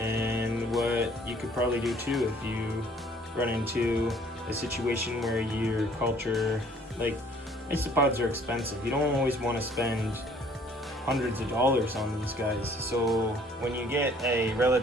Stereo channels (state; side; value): normal; both; correlation 0.57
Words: what you could probably do too if you run into a situation where your culture, like, isopods are expensive. You don't always want to spend hundreds of dollars on these guys. So when you get a